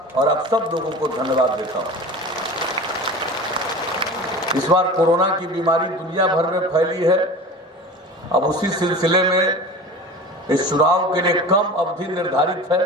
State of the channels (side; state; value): both; normal; correlation 0.35